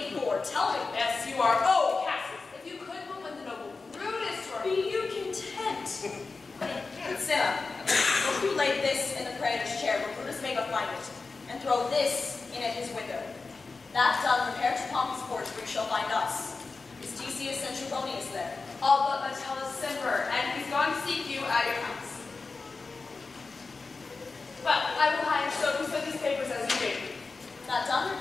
for? Tell me. Yes, you are. Oh, Cassius, if you could but when the noble Brutus or Be you content? Cinna, if you lay this in the praetor's chair where Brutus may but find it, and throw this in at his window, that done, repair to Pompey's porch where you shall find us. Is Decius and Trebonius there? all but Metellus Zimmer, and he's gone to seek you at your house. Well, I will hide so who sent these papers as you did. That done,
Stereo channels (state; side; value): quieter; right; 4.1 dB